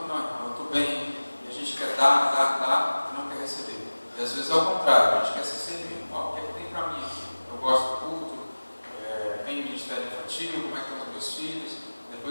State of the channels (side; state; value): both; inverted; correlation -1.00